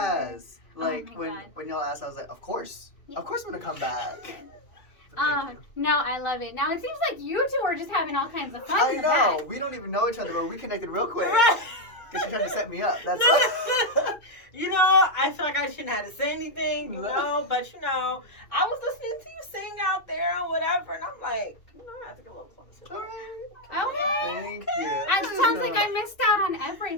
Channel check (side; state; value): right; late; 2.5 ms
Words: Like, Oh my God. when y'all asked, I was like, of course. Yeah. Of course I'm going to come back. But thank you. No, I love it. Now, it seems like you two are just having all kinds of fun I in the know. back. We don't even know each other, but we connected real quick. Right. Because she tried to set me up. That's You know, I feel like I shouldn't have to say anything, but I was listening to you sing out there or whatever, and I'm like, I have to get a little closer. all right. Okay. Thank you. It sounds like I missed out on